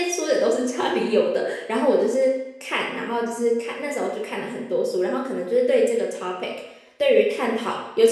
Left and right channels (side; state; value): both; identical; correlation 1.00